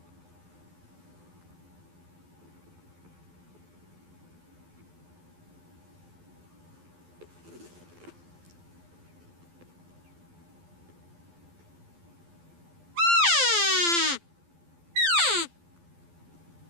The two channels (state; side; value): late; left; 12 ms